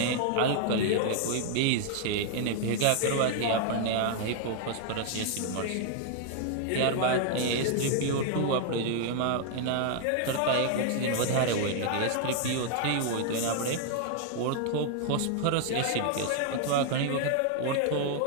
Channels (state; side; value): different; both; correlation 0.00